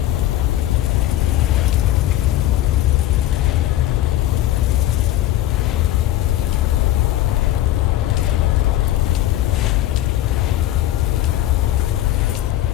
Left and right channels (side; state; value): right; quieter; 13.8 dB